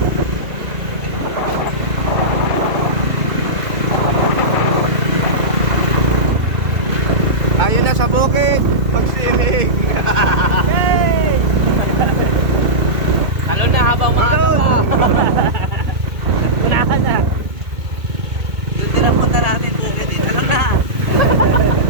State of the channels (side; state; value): left; late; 2.2 ms